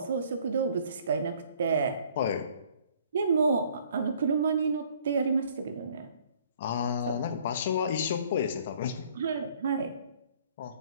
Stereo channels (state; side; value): inverted; both; correlation -0.58